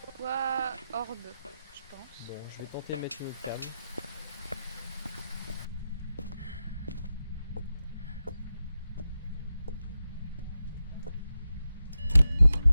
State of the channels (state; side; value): inverted; both; correlation -0.90